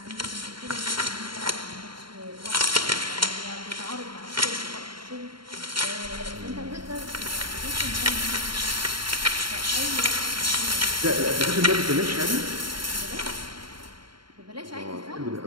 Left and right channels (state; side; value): late; left; 0.73 ms